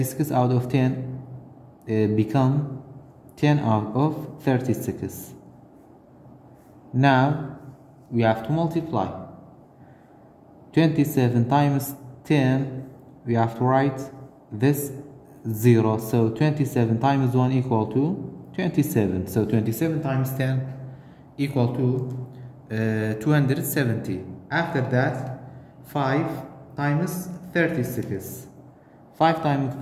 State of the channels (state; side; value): identical; both; correlation 1.00